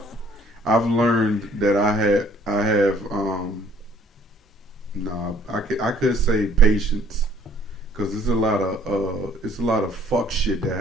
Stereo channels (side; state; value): both; normal; correlation 0.59